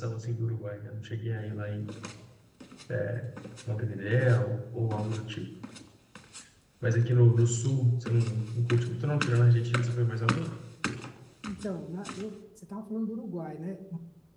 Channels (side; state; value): both; identical; correlation 1.00